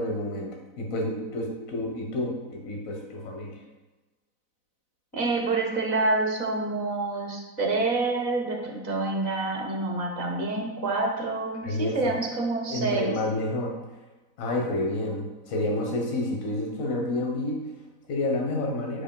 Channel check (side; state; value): right; late; 4.0 ms